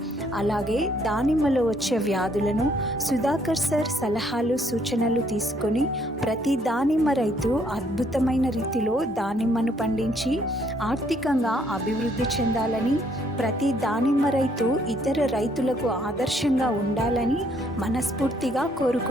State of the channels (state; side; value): normal; both; correlation 0.67